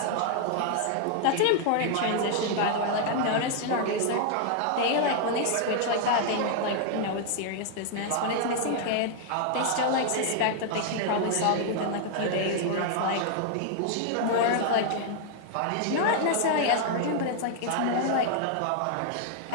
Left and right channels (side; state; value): both; different; correlation 0.00